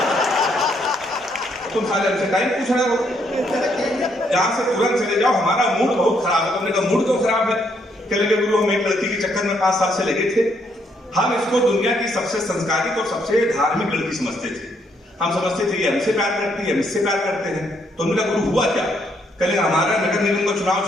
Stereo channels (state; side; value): normal; both; correlation 0.72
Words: तुम साले हमसे टाइम पूछ रहे हो, यहाँ से तुरंत चले जाओ, हमारा मूड बहुत खराब है। तुमने कहा मूड क्यों खराब है? कह लगे गुरु हम एक लड़की के चक्कर में 5 साल से लगे थे। हम इसको दुनिया की सबसे संस्कारित और सबसे धार्मिक लड़की समझते थे। हम समझते थे ये हमसे प्यार करती है, हम इससे प्यार करते हैं। तो उनका गुरु हुआ क्या? कल हमारा नगर निगम का चुनाव